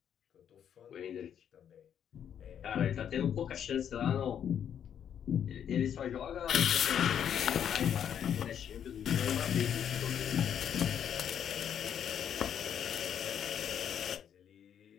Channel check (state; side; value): quieter; right; 8.9 dB